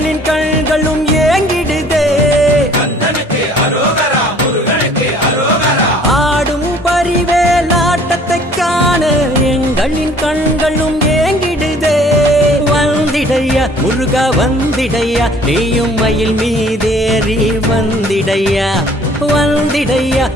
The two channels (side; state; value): both; normal; correlation 0.55